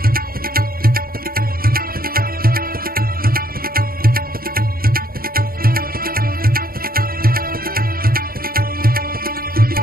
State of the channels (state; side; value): late; left; 0.43 ms